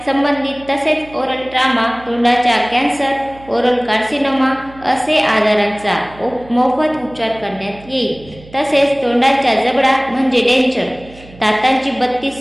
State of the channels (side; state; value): right; noise; hum, 21 dB below the sound